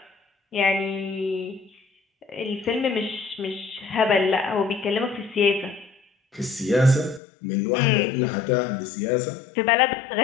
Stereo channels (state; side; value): drops out; right; at 7.2 s